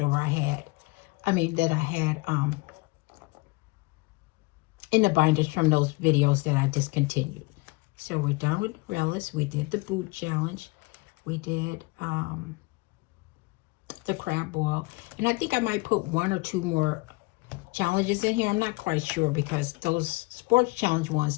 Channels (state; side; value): quieter; right; 25.2 dB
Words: I had. That I had in the binders from those videos that I discontinued. So we're done with Relish. We did the boot challenge. We did the crab boil. And I think I might put 1 or 2 more challenges in here. I'm not quite sure because those sports challenge ones,